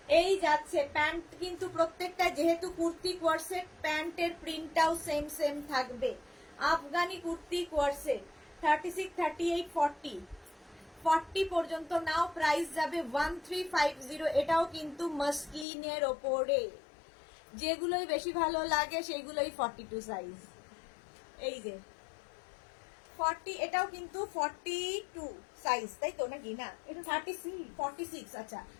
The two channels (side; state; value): right; drops out; at 15.7 s